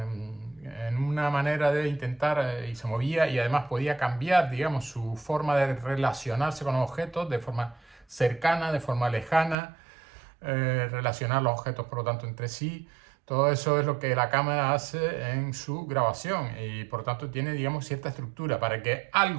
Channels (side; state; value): left; drops out; at 9.6 s